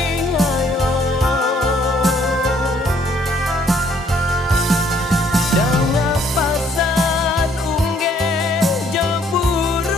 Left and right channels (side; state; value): both; normal; correlation 0.64